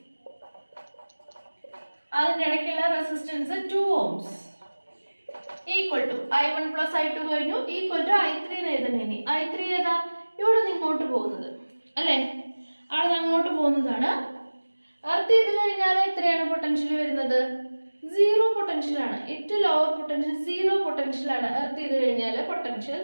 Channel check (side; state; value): both; inverted; correlation -1.00